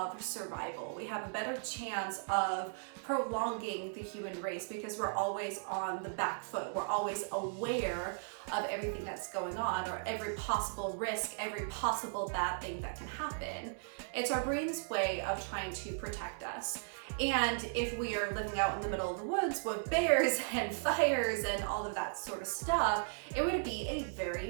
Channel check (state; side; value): silent; left; 53 dB below the other